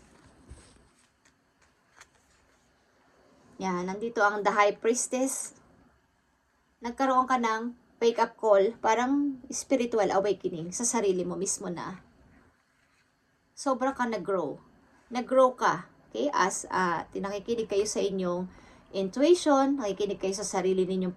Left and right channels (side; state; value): both; identical; correlation 1.00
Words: Yan, nandito ang The High Priestess. Nagkaroon ka ng wake-up call, parang spiritual awakening sa sarili mo mismo na. Sobra ka nag-grow. Nag-grow ka. Okay? As nakikinig kayo sa inyong intuition, nakikinig kayo sa sarili ninyong